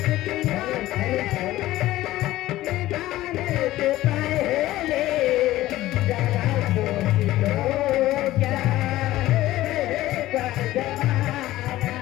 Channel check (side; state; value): right; quieter; 15.8 dB